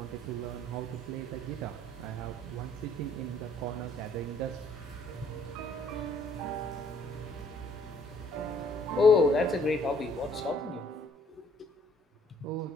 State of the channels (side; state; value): both; normal; correlation 0.62